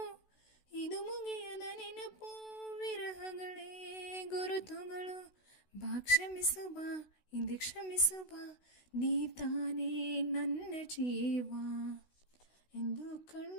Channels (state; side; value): late; right; 16 ms